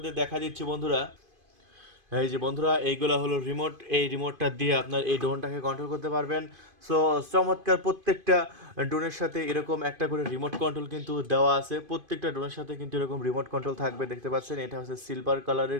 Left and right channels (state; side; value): late; left; 2.5 ms